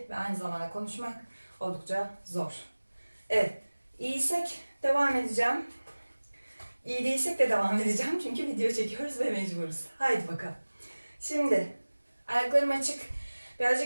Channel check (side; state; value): both; inverted; correlation -1.00